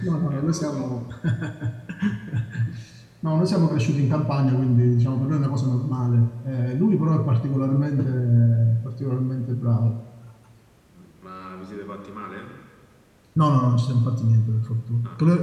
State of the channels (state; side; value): identical; both; correlation 1.00